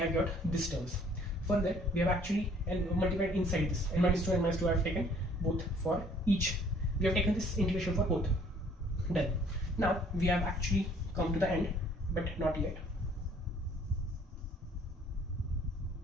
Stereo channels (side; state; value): both; normal; correlation 0.58